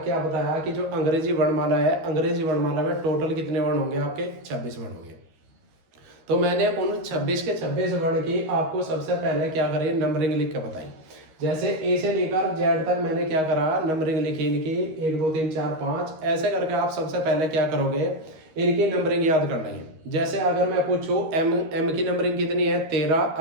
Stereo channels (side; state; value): left; late; 13 ms